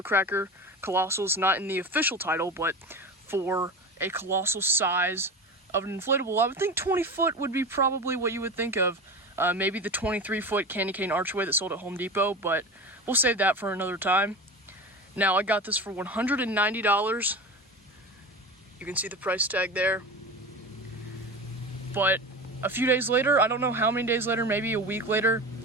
Colossal is not in the official title, but for a colossal size of an inflatable, I would think 20 foot would be probably what you would think of. Maybe the 23-foot candy cane archway that sold at Home Depot, but we'll save that for another time. Now, I got this for $190. You can see the price tag there. But a few days later, I don't know how many days later, maybe a week later,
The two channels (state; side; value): normal; both; correlation 0.29